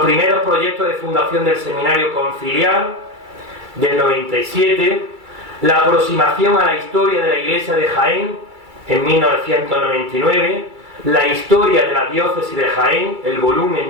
primeros proyectos de fundación del Seminario Conciliar del 97, la aproximación a la historia de la Iglesia de Jaén en 1999, la historia de la diócesis de Jaén, el volumen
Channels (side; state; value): left; late; 2.3 ms